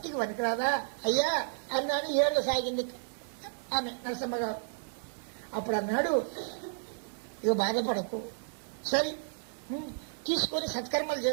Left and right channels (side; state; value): left; silent; digital silence